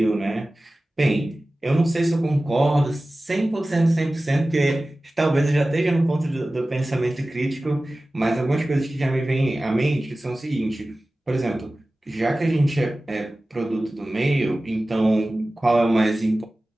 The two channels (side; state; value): both; normal; correlation 0.97